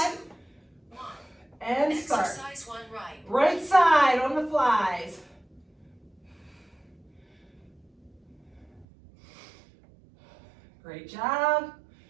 1. And start. Exercise 1 right. Right side on the flies. Great job.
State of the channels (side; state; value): left; drops out; at 8.8 s